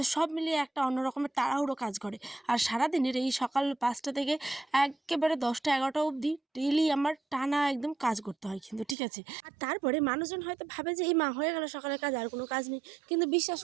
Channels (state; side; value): drops out; left; at 9.0 s